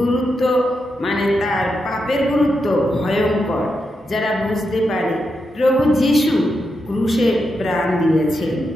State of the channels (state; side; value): normal; both; correlation 0.85